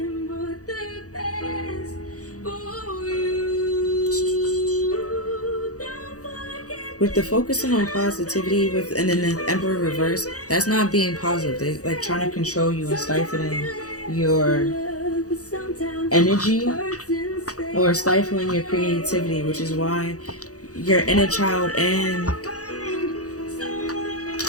with the focusing on positivity and then the Emperor reverse, that's not being positive. They're like trying to control you and stifling your energy or stifling your creativity, which is why your inner child and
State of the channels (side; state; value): right; late; 0.66 ms